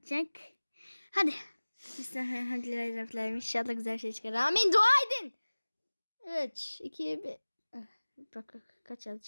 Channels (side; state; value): both; inverted; correlation -1.00